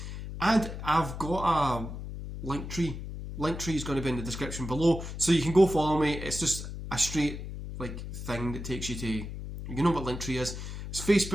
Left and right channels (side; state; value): left; noise; hum, 8 dB below the sound